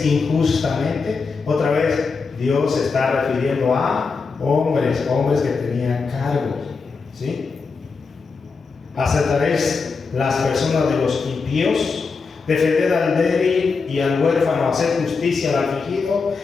injustamente? Otra vez, Dios se está refiriendo a hombres que tenían cargos, ¿sí? ¿Aceptaréis las personas de los impíos? Defended al débil y al huérfano, hacer justicia al afligido,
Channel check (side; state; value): right; quieter; 4.7 dB